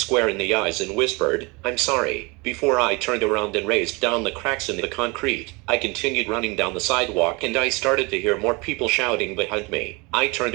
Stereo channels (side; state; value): left; quieter; 27.4 dB